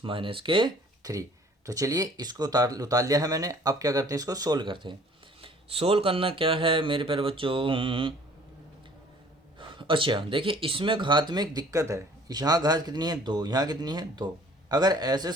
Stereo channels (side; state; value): both; normal; correlation 0.54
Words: minus के 3। तो चलिए इसको उतार लिया है मैंने। अब क्या करते हैं, इसको सोल्व करते हैं। सोल्व करना क्या है मेरे प्यारे बच्चों, अच्छा देखिए इसमें घात में एक दिक्कत है। यहाँ घात कितनी है 2, यहाँ कितनी है 2। अगर ऐसे